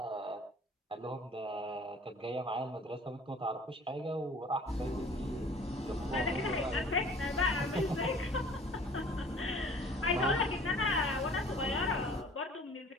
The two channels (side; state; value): both; normal; correlation 0.49